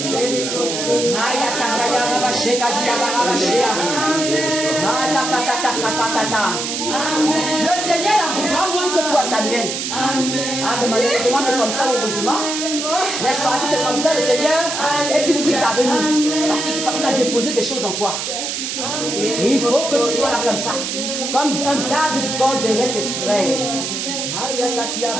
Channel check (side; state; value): right; noise; hiss, 3 dB below the sound